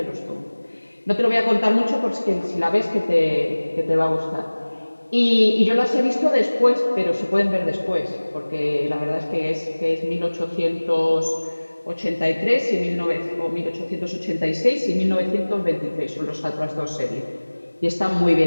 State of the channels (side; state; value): both; inverted; correlation -1.00